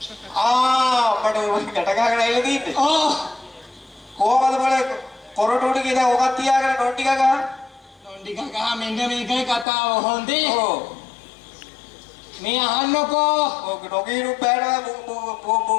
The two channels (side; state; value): right; drops out; at 9.7 s